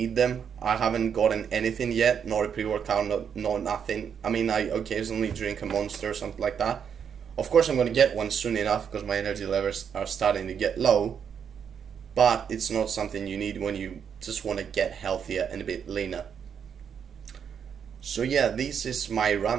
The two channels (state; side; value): quieter; left; 7.6 dB